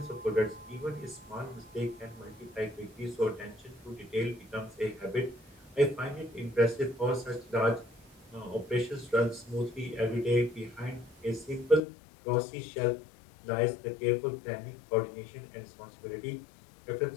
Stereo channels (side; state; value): right; drops out; at 11.8 s